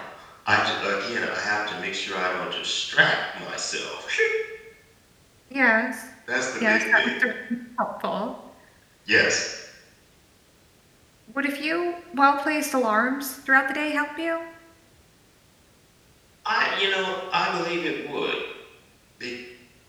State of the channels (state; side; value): identical; both; correlation 1.00